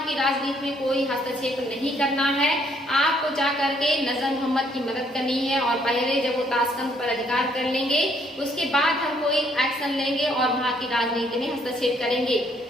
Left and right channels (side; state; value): both; normal; correlation 0.67